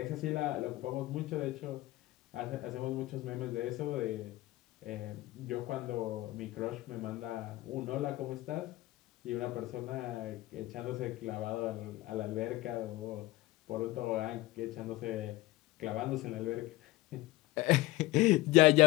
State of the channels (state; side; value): quieter; right; 18.3 dB